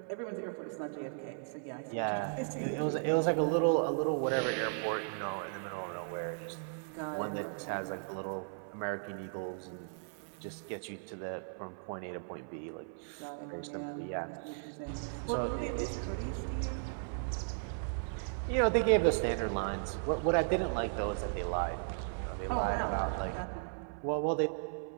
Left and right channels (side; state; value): left; silent; 54 dB below the other